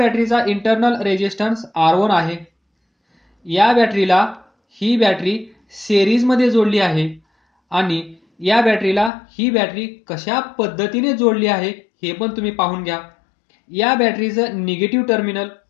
इंटरनल रेजिस्टन्स R1 आहे. या बॅटरीला ही बॅटरी सिरीजमध्ये जोडली आहे आणि या बॅटरीला ही बॅटरी कशा पद्धतीने जोडली आहे हे पण तुम्ही पाहून घ्या. या बॅटरीचं निगेटिव्ह टर्मिनल,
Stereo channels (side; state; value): right; drops out; at 9.1 s